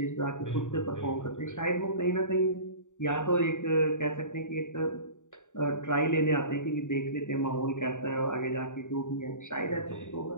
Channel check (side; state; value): right; late; 0.86 ms